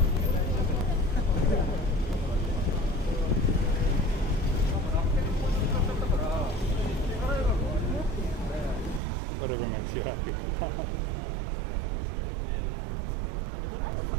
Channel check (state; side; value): drops out; left; at 9.0 s